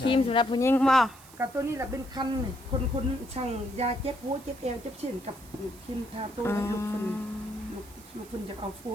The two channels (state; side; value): noise; right; hiss, 21 dB below the sound